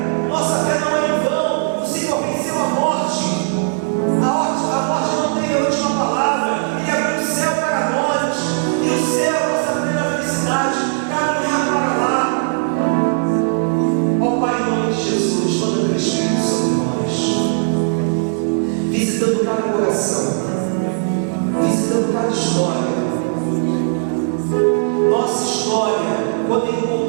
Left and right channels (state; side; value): silent; left; digital silence